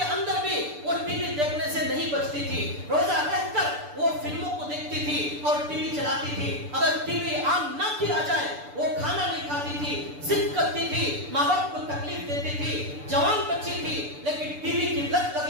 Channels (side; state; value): left; late; 6.8 ms